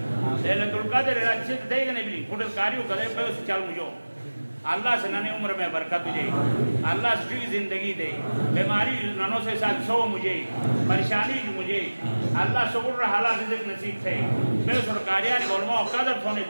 لیلت القادر اچھے دے گا نہیں بلی کھوٹت کاریوں کرے پہ اسے چل مجھو اللہ سے ننے عمر میں برکت تجھے اللہ سے بھی زندگی دے بیماری ننوں سے ساتھ سو مجھے پریشانی مجھے اللہ شکر رہا حالات رزق نصیب تھے میں سرکاریانی علماء قدر تھونے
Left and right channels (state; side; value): inverted; both; correlation -1.00